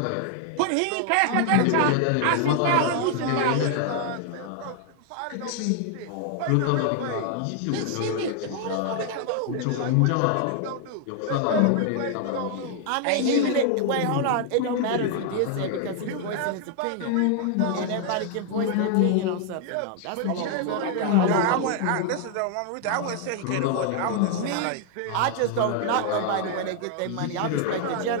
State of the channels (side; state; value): both; different; correlation 0.00